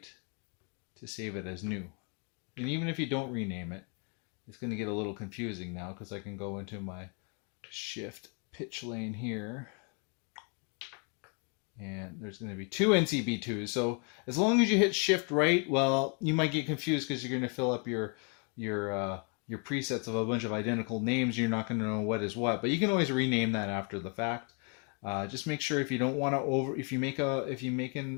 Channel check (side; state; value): right; quieter; 36.3 dB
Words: to save it as new. And even if you don't rename it, it's going to get a little confusing now, because I can go into my shift pitch lane here, and there's going to be two NCB2s. So as long as you hit shift right, well, you might get confused because you're going to fill up your presets of a bunch of identical names. You're not going to know what is what, but you can always rename that after the fact. Just make sure if you don't want to if you make